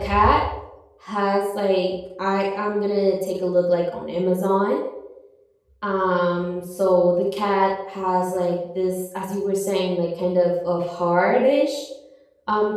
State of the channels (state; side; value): identical; both; correlation 1.00